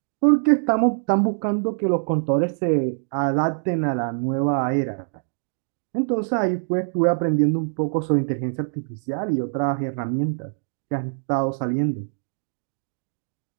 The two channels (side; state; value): left; silent; digital silence